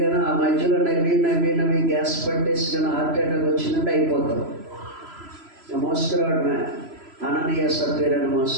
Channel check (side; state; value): left; late; 3.0 ms